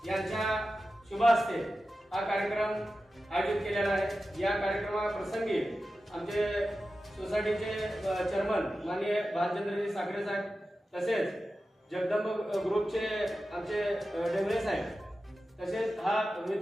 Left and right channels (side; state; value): both; normal; correlation 0.93